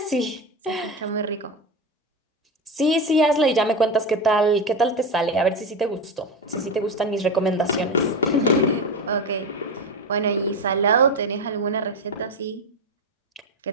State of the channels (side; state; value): both; normal; correlation 0.19